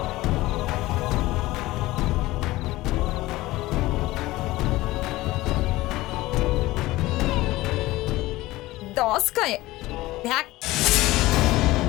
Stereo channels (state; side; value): quieter; right; 18.3 dB